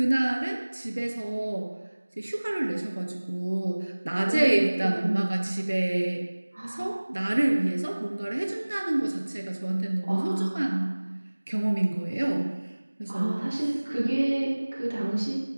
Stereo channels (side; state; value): both; inverted; correlation -1.00